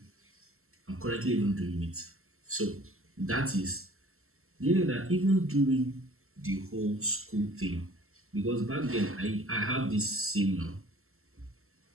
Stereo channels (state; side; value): late; left; 0.62 ms